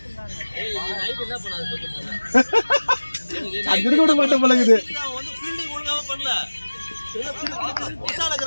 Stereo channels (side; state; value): both; inverted; correlation -1.00